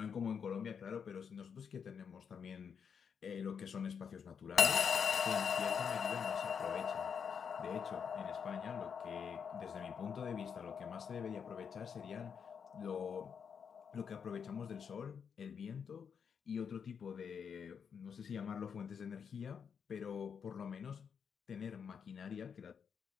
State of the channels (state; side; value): quieter; right; 6.8 dB